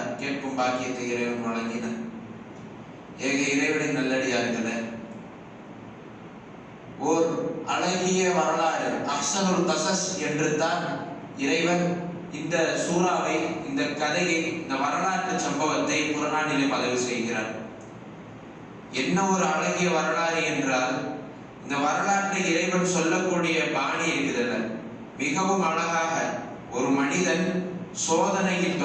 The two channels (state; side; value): identical; both; correlation 1.00